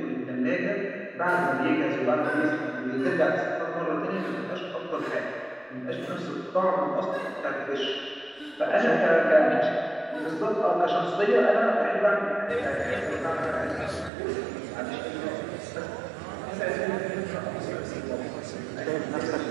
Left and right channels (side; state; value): left; drops out; at 14.1 s